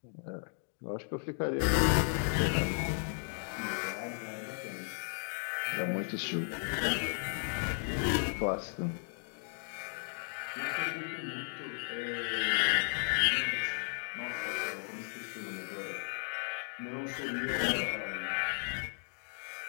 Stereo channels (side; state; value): right; silent; digital silence